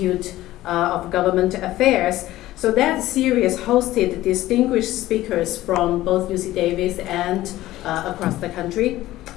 of Government Affairs. So that series hosted distinguished speakers from both UC Davis and across the country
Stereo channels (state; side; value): quieter; right; 15.7 dB